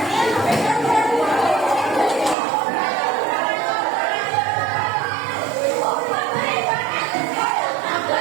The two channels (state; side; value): drops out; left; at 2.4 s